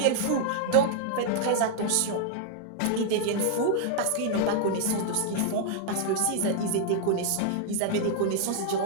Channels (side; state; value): both; different; correlation -0.01